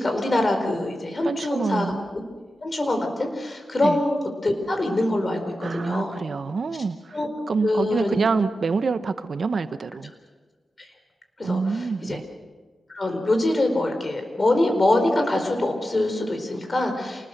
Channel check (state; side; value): normal; both; correlation 0.91